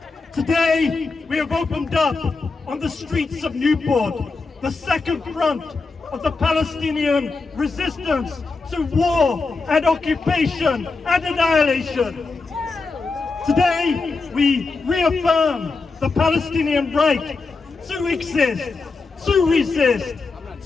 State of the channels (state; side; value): quieter; right; 4.0 dB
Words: Today, we have opened up on the streets of Newport the second front of the Palestinian resistance to war and occupation and annihilation. Today, we reaffirm the Palestinian right to exist, to resist,